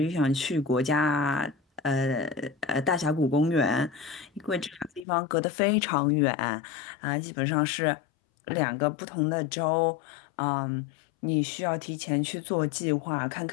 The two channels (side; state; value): right; drops out; at 5.1 s